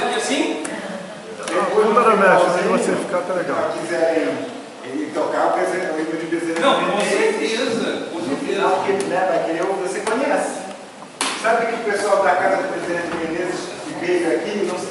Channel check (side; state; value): both; identical; correlation 1.00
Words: que o pessoal da casa do presidente Menezes que veio aqui